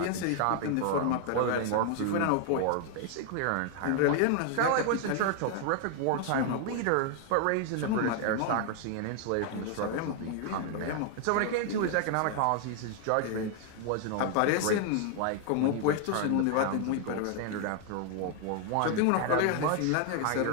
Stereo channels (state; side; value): different; both; correlation 0.00